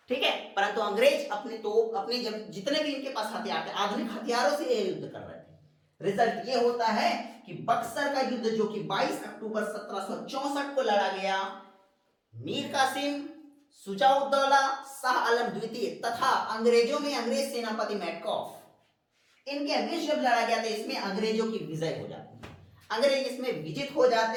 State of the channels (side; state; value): both; identical; correlation 1.00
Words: ठीक है, परंतु अंग्रेज अपने तोप, अपने जब जितने भी इनके पास हथियार थे, आधुनिक हथियारों से ये युद्ध कर रहे थे। रिजल्ट ये होता है कि बक्सर का युद्ध, जो कि 22 अक्टूबर 1764 को लड़ा गया, मीर कासिम, शुजाउद्दौला, शाह आलम द्वितीय तथा अंग्रेजों में अंग्रेज सेनापति मैटकॉफ, इनके बीच जब लड़ा गया था, इसमें अंग्रेजों की विजय हो जाती है, अंग्रेज इसमें विजित हो